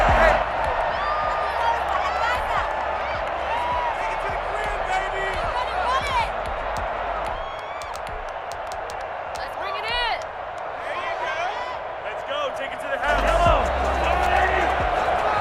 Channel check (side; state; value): both; identical; correlation 1.00